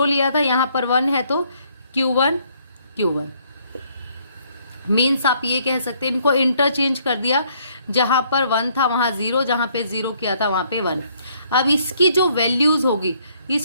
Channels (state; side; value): inverted; both; correlation -0.67